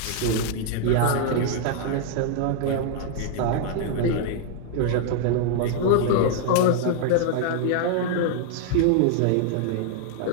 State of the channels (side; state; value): both; different; correlation 0.00